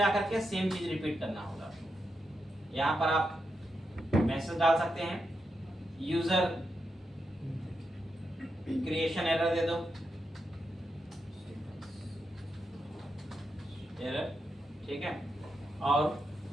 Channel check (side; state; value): both; normal; correlation 0.85